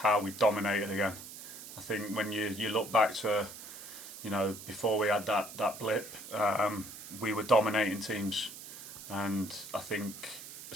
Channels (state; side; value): noise; right; hiss, 12 dB below the sound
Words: we dominated again. I think when you look back to before we had that blip, we were dominating teams, and I think